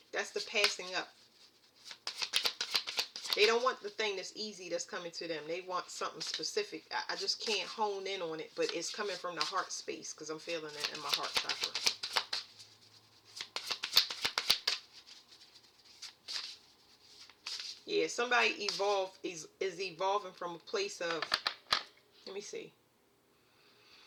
That's the passing up. They don't want the thing that's easy that's coming to them. They want something specific. I just can't hone in on it, but it's coming from the heart space because I'm feeling it in my heart chakra. Yeah, somebody is evolving from a place of, let me see.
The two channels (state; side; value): identical; both; correlation 1.00